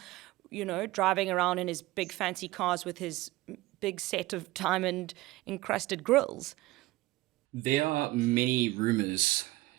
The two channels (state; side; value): quieter; left; 18.8 dB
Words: driving around in his big fancy cars with his big set of diamond encrusted grills? There are many rumors